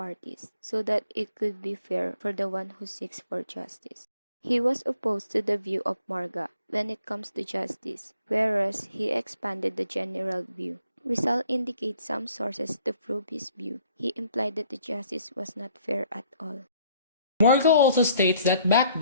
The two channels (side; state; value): both; inverted; correlation -0.64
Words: so that it could be fair for the one who seeks for justice. He was opposed to the view of Morga when it comes to justice, whereas he expanded the general view. Rizal indicates some sources to prove his view. He implied that the justice was not fair at all. Morga also states that back